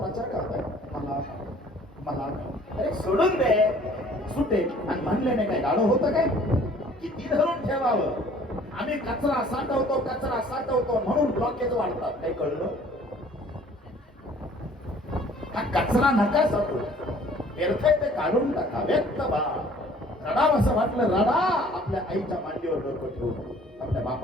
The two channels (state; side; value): normal; both; correlation 0.54